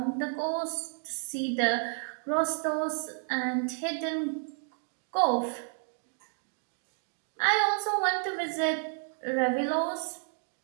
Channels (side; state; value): left; silent; 57 dB below the other